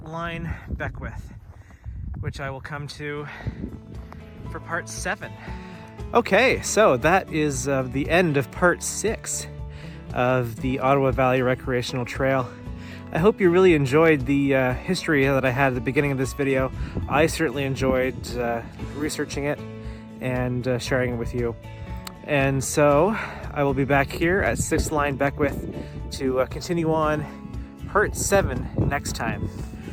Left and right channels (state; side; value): identical; both; correlation 1.00